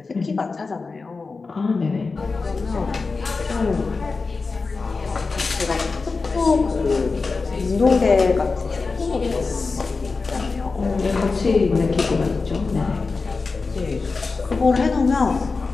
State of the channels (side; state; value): right; quieter; 4.2 dB